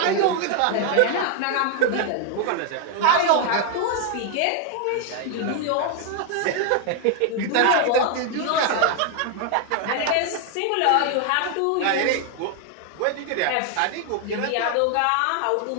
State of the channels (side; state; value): both; different; correlation 0.00